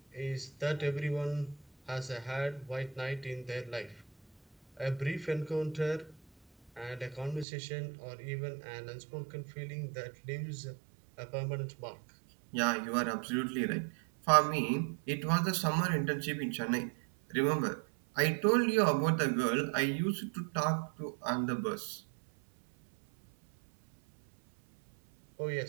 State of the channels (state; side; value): drops out; left; at 7.5 s